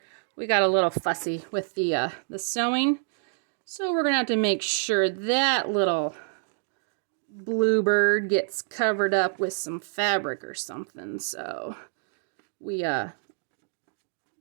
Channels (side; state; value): left; silent; digital silence